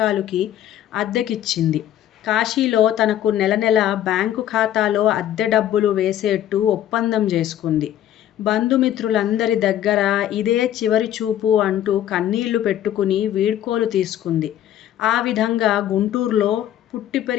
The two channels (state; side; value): quieter; right; 11.6 dB